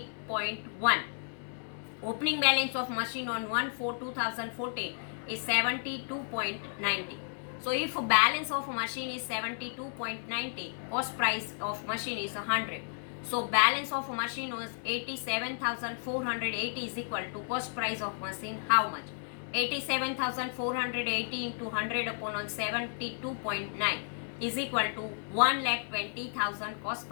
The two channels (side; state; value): right; silent; digital silence